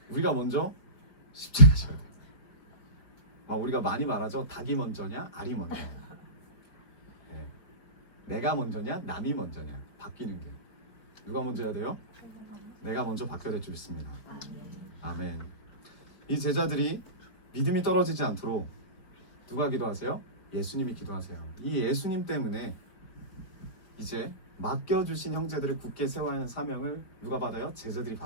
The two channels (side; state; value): right; late; 4.4 ms